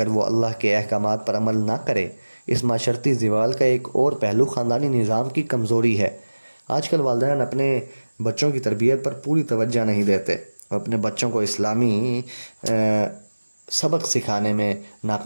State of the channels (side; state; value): both; inverted; correlation -1.00